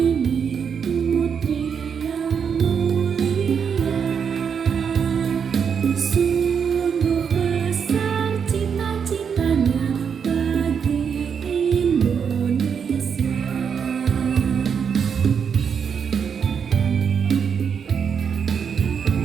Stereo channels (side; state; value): left; quieter; 6.9 dB